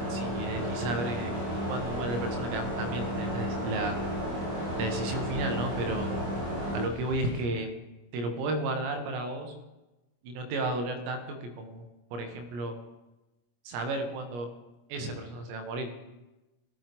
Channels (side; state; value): left; late; 25 ms